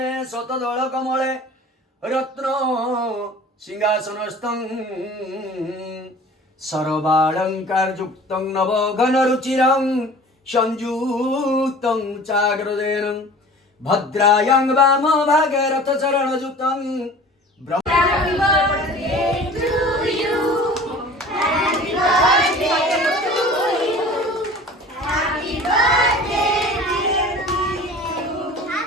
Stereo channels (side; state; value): both; normal; correlation 0.43